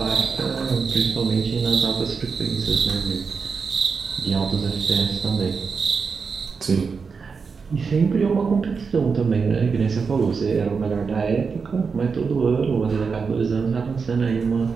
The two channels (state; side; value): quieter; left; 5.3 dB